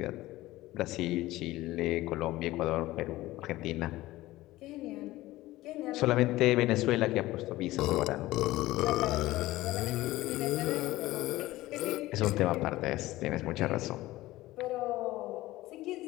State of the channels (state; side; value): quieter; right; 17.4 dB